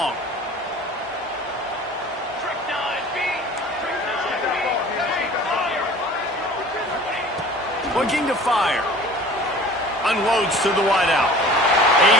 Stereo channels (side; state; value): both; normal; correlation 0.44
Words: Looking to fire. Unloads to the wideout. A